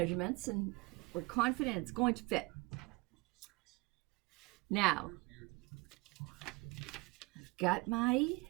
and we're confident it's going to fit. Now, I've got my,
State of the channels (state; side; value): quieter; left; 25.3 dB